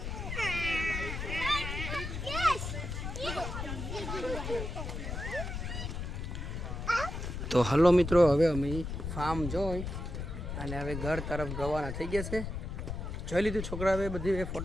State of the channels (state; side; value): noise; left; rumble, 5 dB below the sound